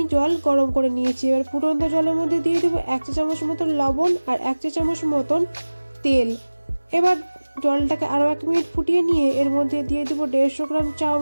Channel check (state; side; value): inverted; both; correlation -1.00